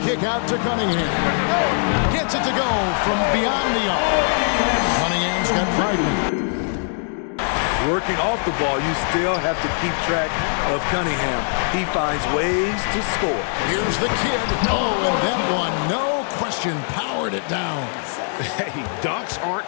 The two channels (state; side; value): silent; right; 57 dB below the other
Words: kick out to Cunningham. Gets it to go from beyond the arc. Cunningham's got 5 men. Working off the ball, you still have to keep track of Cunningham. He finds ways to score. Here's the kid. Oh, and that one, no question, powered it down. Hey, dunks aren't